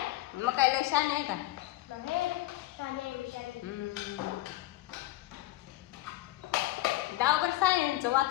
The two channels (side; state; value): right; quieter; 17.2 dB